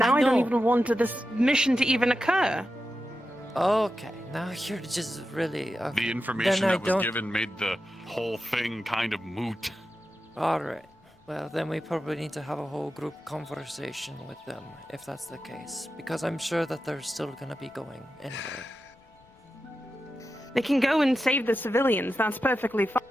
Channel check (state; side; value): normal; both; correlation 0.90